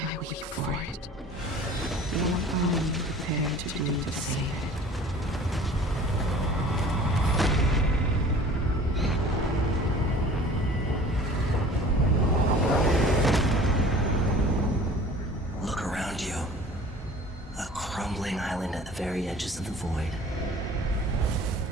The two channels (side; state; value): both; normal; correlation 0.46